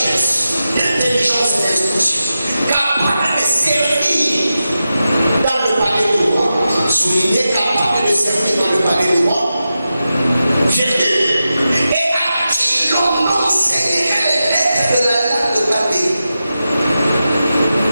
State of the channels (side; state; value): both; inverted; correlation -0.91